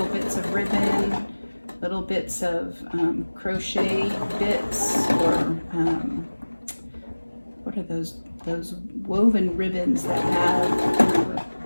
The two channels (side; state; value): both; inverted; correlation -1.00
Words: bits of ribbon, little bits of crochet bits, or what are those woven ribbons that have